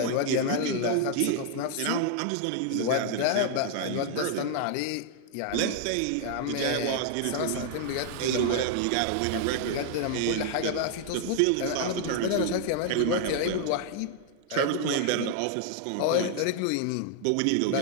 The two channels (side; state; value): both; different; correlation 0.00